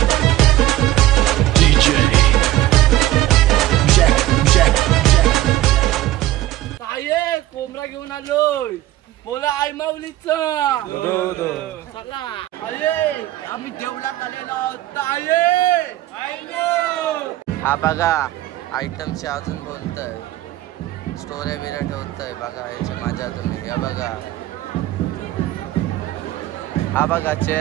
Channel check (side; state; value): left; quieter; 15.0 dB